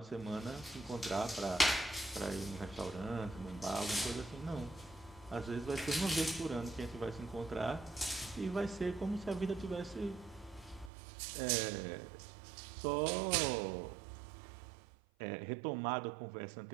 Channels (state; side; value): drops out; left; at 10.9 s